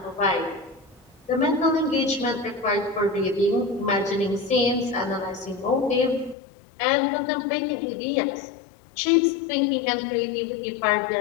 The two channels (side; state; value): right; drops out; at 6.4 s